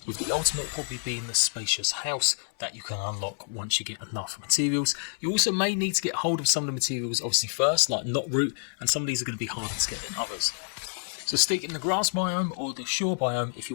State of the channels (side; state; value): right; silent; 59 dB below the other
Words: With the ultimate probably being the spacious house that you can unlock once you get enough materials. You also may need to get hold of some of the materials obviously first, like knot root, and some of these are going to be harder to get than others. So stick in the grass biome or the shore biome if you